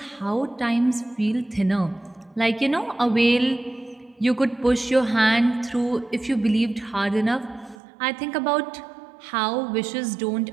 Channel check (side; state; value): left; drops out; at 7.8 s